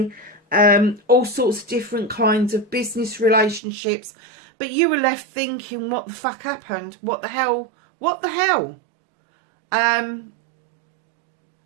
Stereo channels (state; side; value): drops out; left; at 3.6 s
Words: all sorts of different kinds of business relationships. But you were left thinking, what the fuck happened? What the hell? What the hell? And